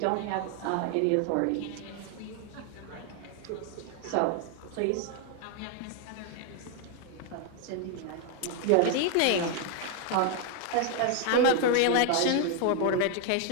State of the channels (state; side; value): different; both; correlation 0.00